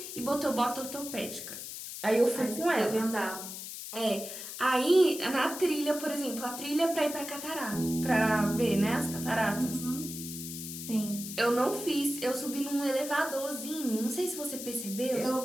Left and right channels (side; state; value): left; noise; hiss, 9 dB below the sound